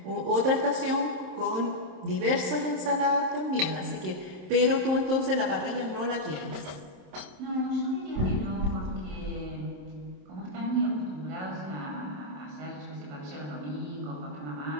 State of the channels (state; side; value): late; left; 27 ms